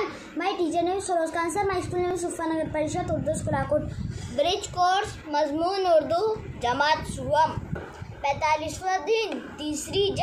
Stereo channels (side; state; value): both; identical; correlation 1.00